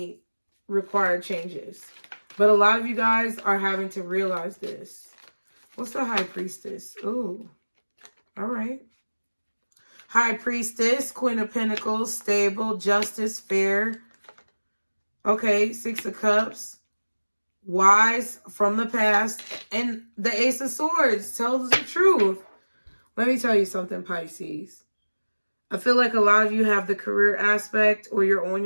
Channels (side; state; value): both; inverted; correlation -1.00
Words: required changes. But a lot of you guys are having to realize this. What's the High Priestess? Ooh. All right. High Priestess, Queen of Pentacles, stable, justice, fair. Okay, Six of Cups. Wise from the past. And the Ace of Swords tells the truth. Let me tell you something, Pisces. I feel like a lot of you have the career aspect, or you're on